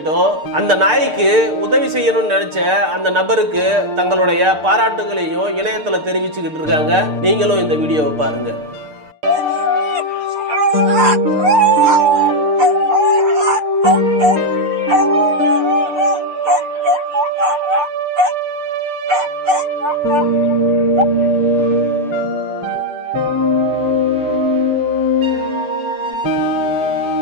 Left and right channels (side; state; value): left; late; 6.7 ms